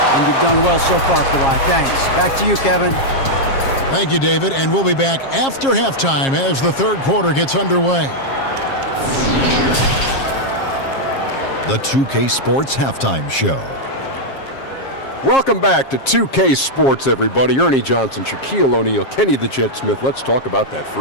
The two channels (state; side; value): late; right; 7.4 ms